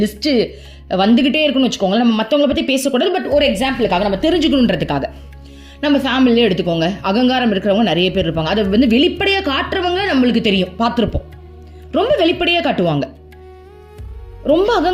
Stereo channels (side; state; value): both; identical; correlation 1.00